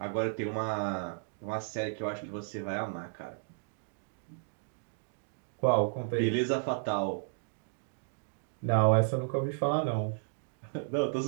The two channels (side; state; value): left; silent; digital silence